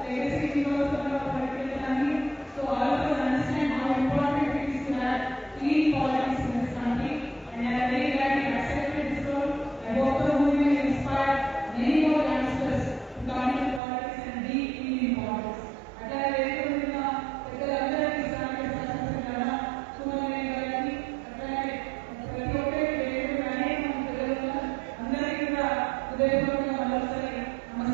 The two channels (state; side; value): drops out; left; at 13.8 s